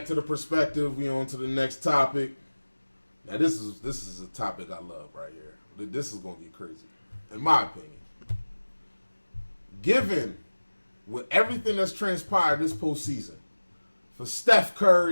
to the perspective. We on to the next topic. Now, this is a topic I love right here. This is going to get crazy, in my opinion. Given with everything that's transpired this postseason, for Steph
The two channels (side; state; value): both; inverted; correlation -1.00